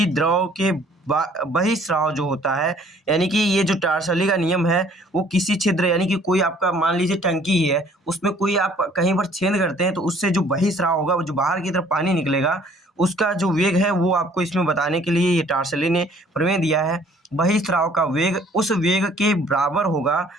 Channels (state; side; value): normal; both; correlation 0.57